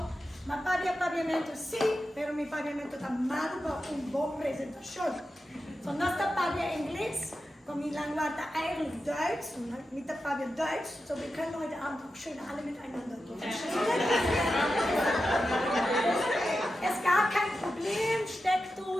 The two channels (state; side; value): normal; both; correlation 0.91